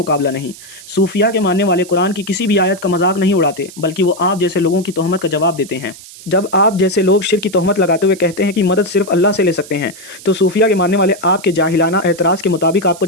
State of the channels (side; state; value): right; noise; hiss, 18 dB below the sound